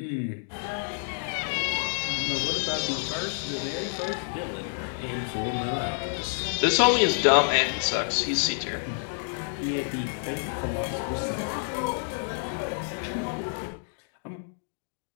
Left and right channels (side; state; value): right; silent; digital silence